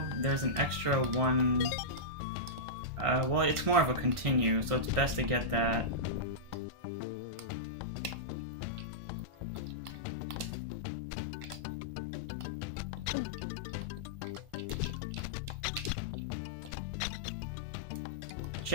there's an extra one. Well, it's more of a continue, so it's best to get that.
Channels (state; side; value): late; left; 1.5 ms